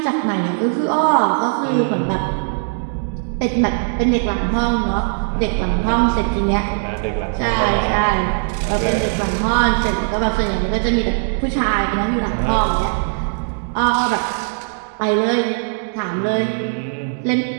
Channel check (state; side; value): silent; left; 66 dB below the other